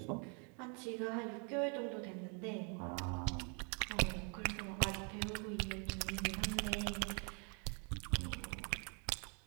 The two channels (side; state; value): left; quieter; 37.6 dB